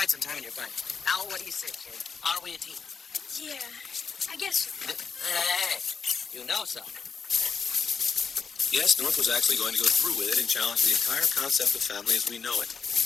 it sometime in your bike. Now, what do you say, kid? Are we a team? Yeah, I guess so. Hey, you know something. Yes, North was actually going to go through with it and challenge the entire concept of family as we know it.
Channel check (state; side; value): quieter; right; 5.7 dB